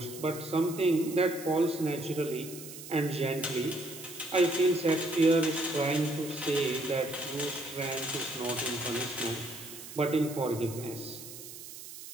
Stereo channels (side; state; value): right; noise; hiss, 13 dB below the sound